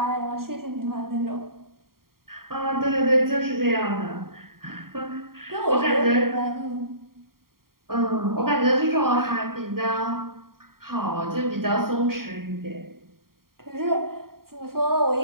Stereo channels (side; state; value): left; late; 0.93 ms